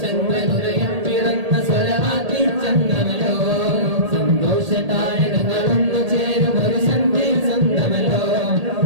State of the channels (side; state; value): left; late; 1.8 ms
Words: ചന്ദ്രനുദയം പിറന്ന സ്വലവാക്കിൻ ചന്ദ്രമല്ലോ സന്തോഷ താരകങ്ങളൊന്നു ചേരും ഒരു സന്ധ്യയിൽ സ്വന്തമല്ലോ